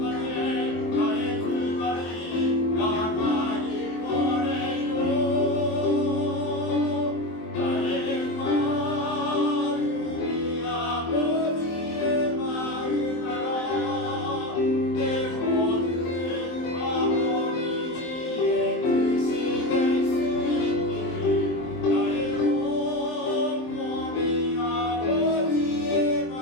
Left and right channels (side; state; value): right; late; 23 ms